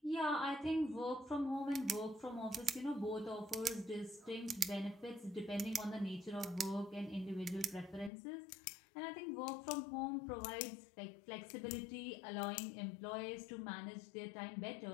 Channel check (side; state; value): right; drops out; at 8.1 s